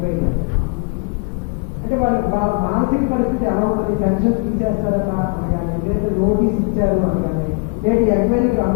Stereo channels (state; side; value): quieter; right; 32.2 dB